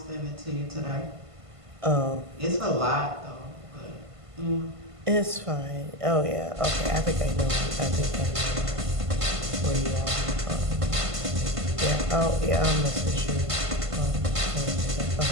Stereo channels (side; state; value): left; late; 1.5 ms